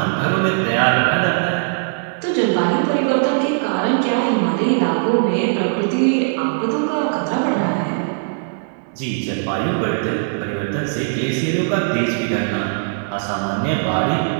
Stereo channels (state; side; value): silent; left; 66 dB below the other